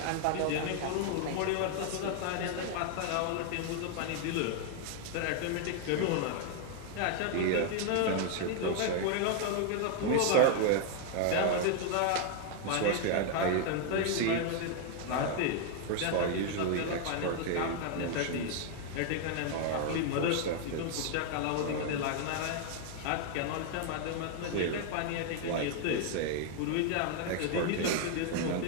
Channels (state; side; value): different; both; correlation 0.00